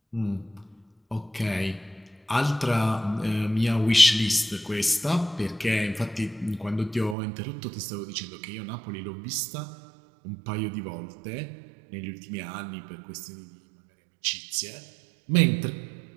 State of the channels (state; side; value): drops out; left; at 7.2 s